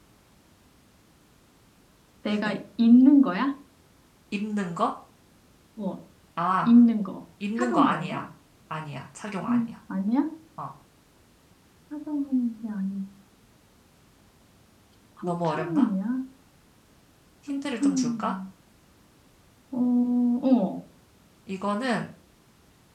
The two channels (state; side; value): identical; both; correlation 1.00